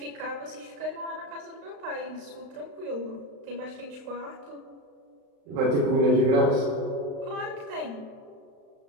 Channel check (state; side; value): late; left; 35 ms